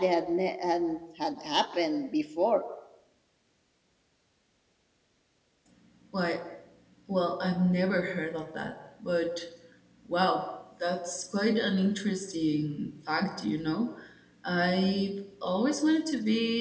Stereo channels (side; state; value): both; identical; correlation 1.00